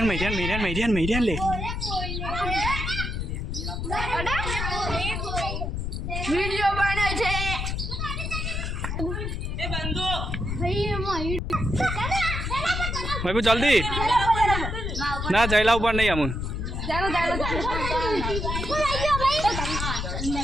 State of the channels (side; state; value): left; noise; rumble, 3 dB below the sound